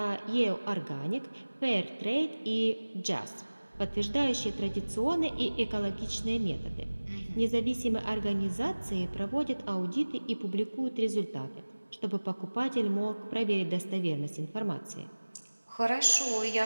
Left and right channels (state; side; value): inverted; both; correlation -1.00